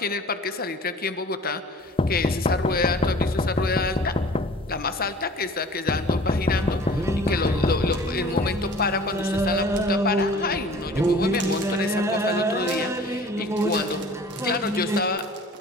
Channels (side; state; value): both; normal; correlation 0.46